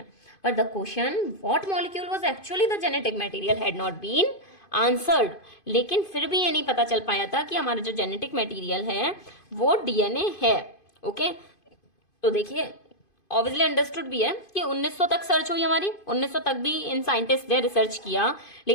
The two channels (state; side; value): late; right; 2.5 ms